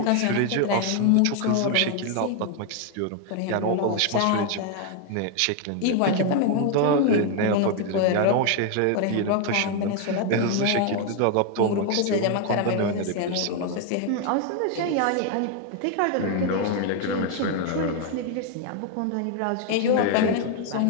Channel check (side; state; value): both; different; correlation 0.01